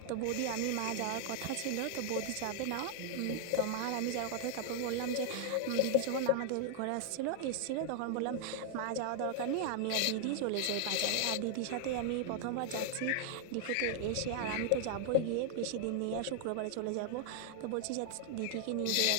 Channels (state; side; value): different; both; correlation 0.00